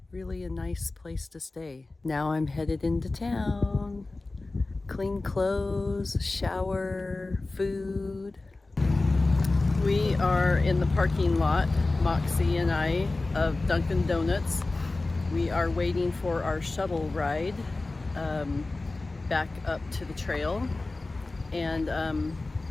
really a nice place to stay. Now I'm headed into town. Clean clothes, shower, food. We are in the parking lot, Moxie and I, of Dunkin' Donuts. We are waiting for our shuttle ride back up to the trail. And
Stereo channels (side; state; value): right; quieter; 3.2 dB